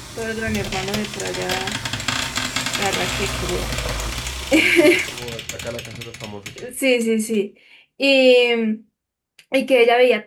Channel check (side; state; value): both; identical; correlation 1.00